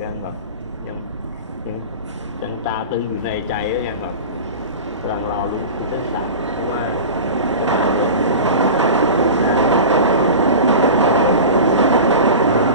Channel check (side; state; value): both; inverted; correlation -0.32